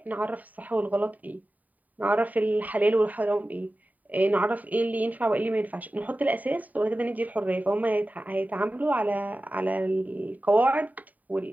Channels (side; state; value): left; late; 0.077 ms